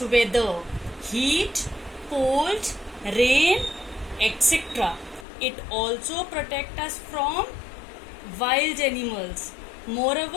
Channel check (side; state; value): right; drops out; at 5.2 s